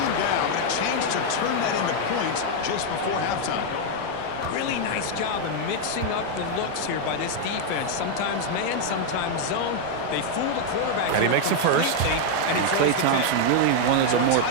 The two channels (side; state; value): both; different; correlation 0.00